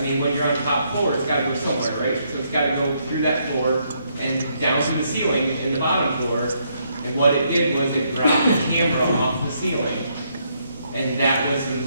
mean, when you're on top floor, it's gotta go somewhere, right? So it's gotta go through that floor and down to the ceiling in the bottom floor, and what it did was it dropped the camera off the ceiling, and that was the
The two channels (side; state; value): both; inverted; correlation -0.74